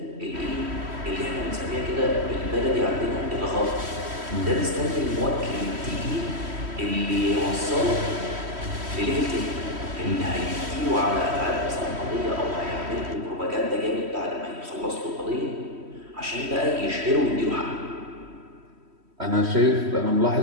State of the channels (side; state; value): left; late; 3.1 ms